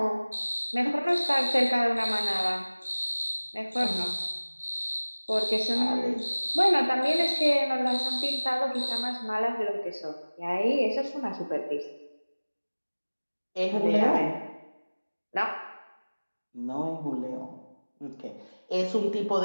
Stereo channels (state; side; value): inverted; both; correlation -1.00